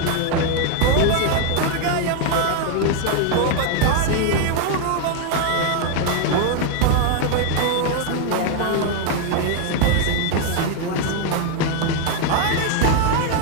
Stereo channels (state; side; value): different; both; correlation 0.01